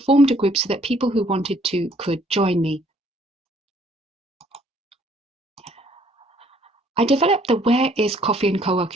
a group so that people who wanted to could join me. I developed the Where is Coffee and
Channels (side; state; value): both; normal; correlation 0.62